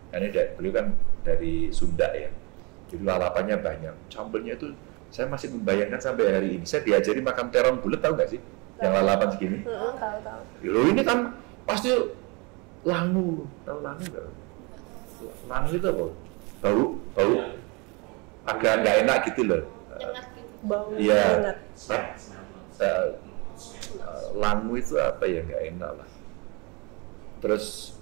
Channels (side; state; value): left; quieter; 29.1 dB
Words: karena beliau kan dari Sunda ya. Jadi lalapannya banyak. Sambelnya itu saya masih membayangkan sampai hari ini. Saya diajari makan terong bulat, tahu nggak sih? Yang lalapan segini. Tahu. Loh ini kan pasti langu. Tahu langu nggak? Langu itu apa? Bau. Agak nggak enak gitu loh. Nyengat gitu. Bau Iya. banget. langu itu apa ya, nggak enak lah. Terus